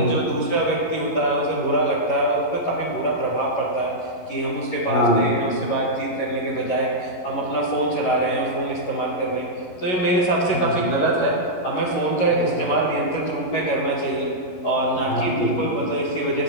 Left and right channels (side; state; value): right; late; 11 ms